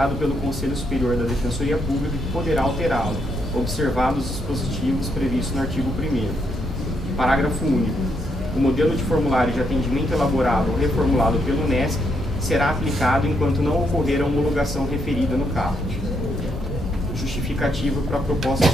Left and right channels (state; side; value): normal; both; correlation 0.76